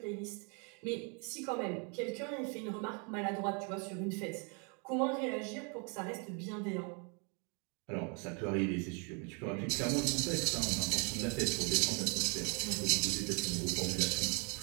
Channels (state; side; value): quieter; left; 36.0 dB